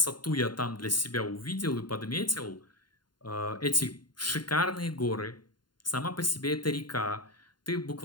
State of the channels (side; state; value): right; late; 0.71 ms